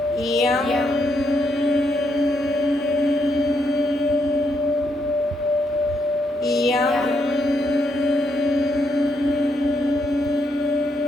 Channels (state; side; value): normal; both; correlation 0.77